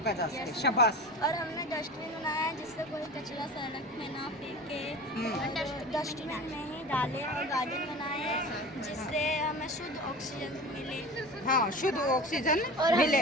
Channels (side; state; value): both; normal; correlation 0.33